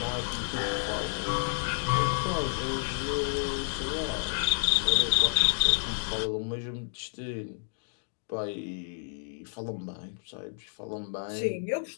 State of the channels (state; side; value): silent; right; digital silence